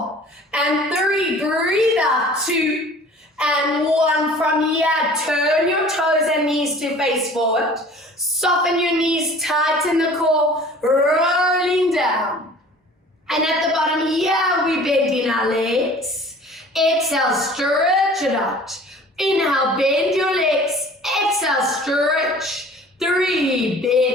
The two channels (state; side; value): normal; both; correlation 0.47